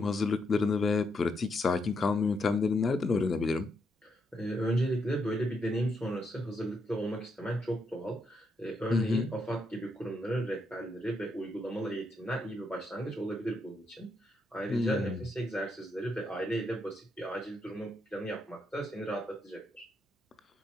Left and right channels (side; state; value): both; normal; correlation 0.79